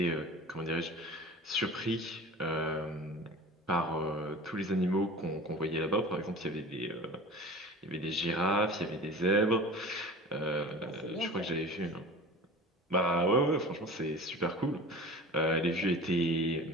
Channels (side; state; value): both; normal; correlation 0.38